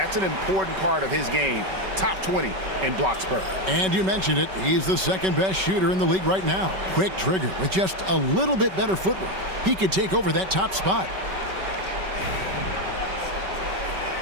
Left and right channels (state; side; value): late; left; 5.2 ms